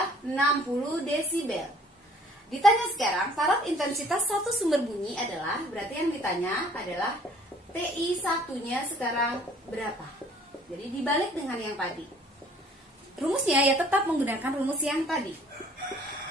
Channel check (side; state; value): both; normal; correlation 0.56